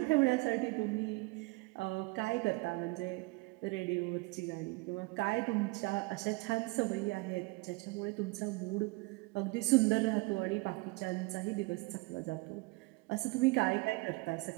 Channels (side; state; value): left; quieter; 25.1 dB